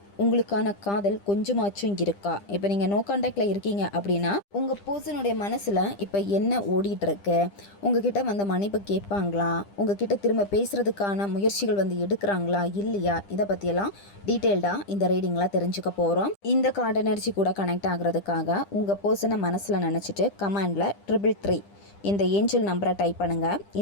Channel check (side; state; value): right; late; 10 ms